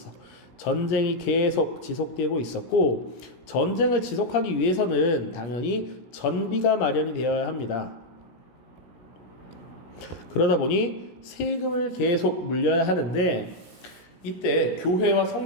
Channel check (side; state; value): right; late; 17 ms